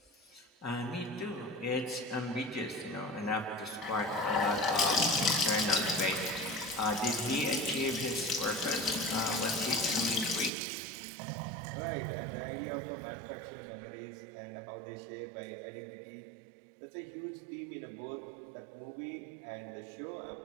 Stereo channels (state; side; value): drops out; left; at 10.5 s